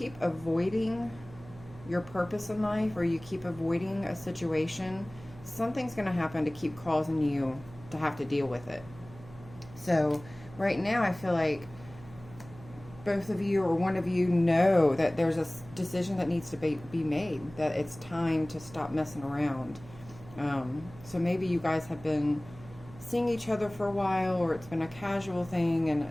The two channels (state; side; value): noise; right; hum, 18 dB below the sound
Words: avoiding your purpose in life, or you keep avoiding a situation, something's going to happen to keep causing you to have to deal with it. So right now I feel like both of you or one of you know that there's a decision that needs to be made, that it's time to stop messing around. So maybe you guys have been seeing each other for a while, or it's been a casual thing,